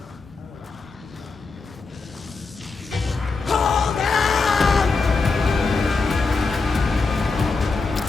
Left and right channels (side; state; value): right; quieter; 4.1 dB